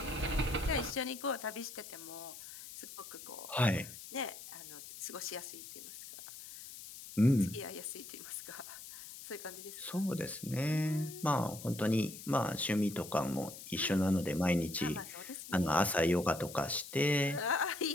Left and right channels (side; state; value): left; noise; hiss, 13 dB below the sound